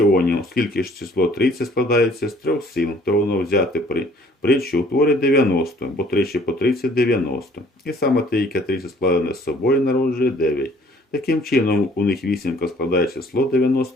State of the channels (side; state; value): both; normal; correlation 0.57